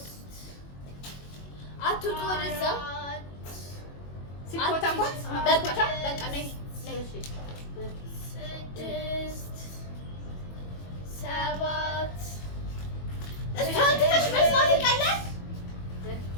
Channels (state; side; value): late; right; 21 ms